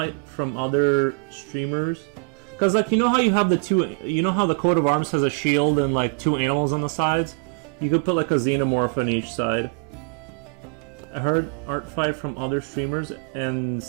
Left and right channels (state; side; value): quieter; left; 37.6 dB